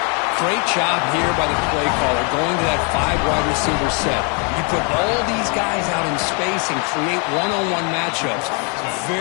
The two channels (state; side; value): quieter; right; 36.2 dB